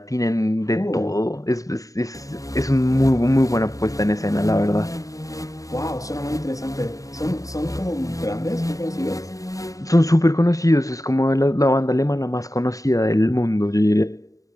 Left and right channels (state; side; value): late; right; 0.16 ms